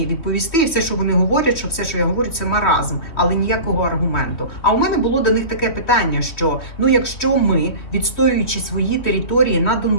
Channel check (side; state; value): right; late; 3.1 ms